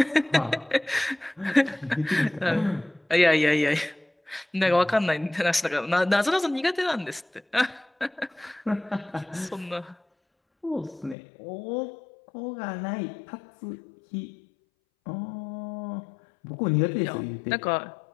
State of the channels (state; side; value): drops out; right; at 11.2 s